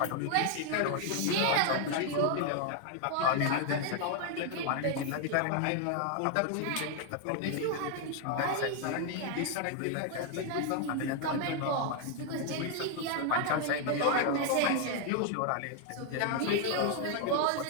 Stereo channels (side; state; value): both; different; correlation 0.00